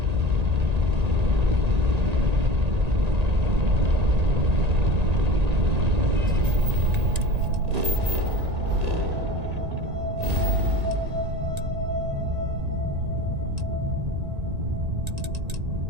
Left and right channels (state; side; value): late; left; 1.8 ms